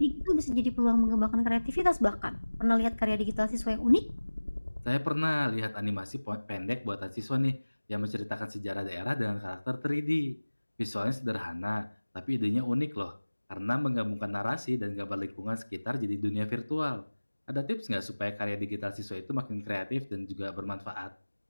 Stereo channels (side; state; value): both; inverted; correlation -1.00